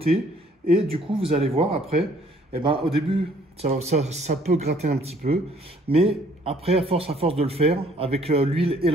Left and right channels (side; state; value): both; normal; correlation 0.61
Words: et du coup, vous allez voir après, au début, ça peut gratter un petit peu, mais après, à force de le faire, avec l'huile et